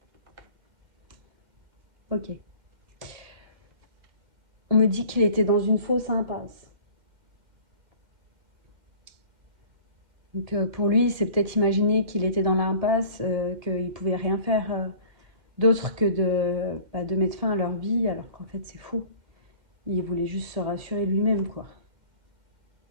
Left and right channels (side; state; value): left; late; 2.1 ms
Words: Ok. On me dit qu'il était dans une fausse impasse. Donc pour lui, c'est peut-être imaginer qu'il était dans l'impasse, qu'il pouvait rien faire d'autre que de mettre fin à leur vie, alors qu'en fait c'est faux. Il voulait juste se rassurer lui-même, quoi.